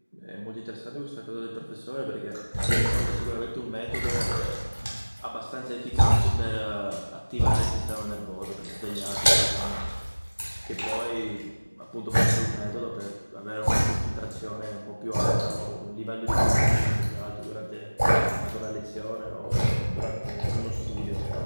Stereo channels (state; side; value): inverted; both; correlation -1.00